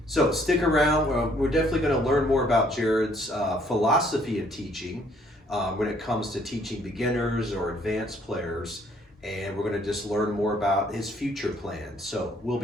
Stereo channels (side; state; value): both; normal; correlation 0.64